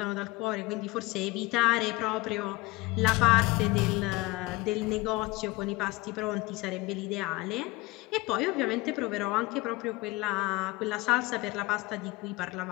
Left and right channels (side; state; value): right; quieter; 21.7 dB